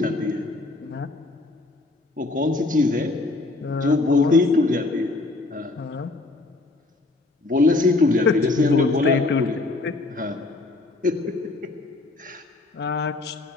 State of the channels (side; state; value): right; quieter; 3.2 dB